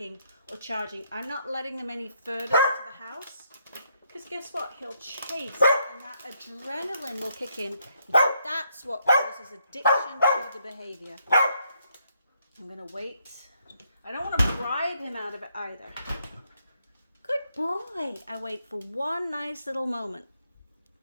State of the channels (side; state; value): both; inverted; correlation -0.74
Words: or charging. I'm not letting them any further into the house, because guess what? He'll chase, and that adrenaline will kick in. That's what causes addiction to the behavior. I'm going to wait. I don't want to bribe him out of it either. Good boy. I wait for one nice little moment.